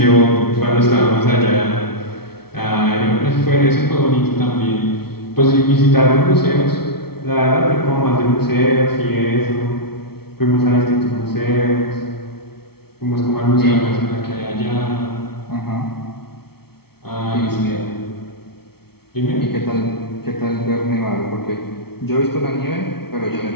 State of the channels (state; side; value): late; right; 0.95 ms